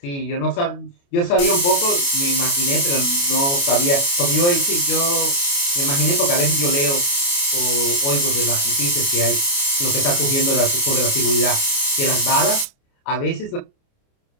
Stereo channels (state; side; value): late; right; 29 ms